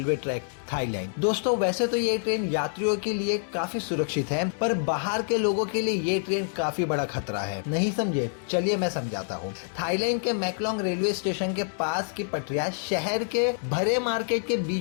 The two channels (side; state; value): right; silent; digital silence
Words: ट्रैक, थाईलैंड। दोस्तों, वैसे तो ये ट्रेन यात्रियों के लिए काफी सुरक्षित है, पर बाहर के लोगों के लिए ये ट्रेन काफी बड़ा खतरा है। नहीं समझे? चलिए मैं समझाता हूँ। थाईलैंड के मैकलोंग रेलवे स्टेशन के पास की पटरियां शहर के भरे मार्केट के